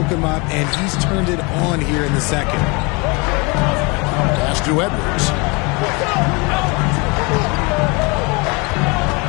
him up, and he's turned it on here in the second. Pass to Edwards.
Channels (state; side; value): quieter; right; 28.7 dB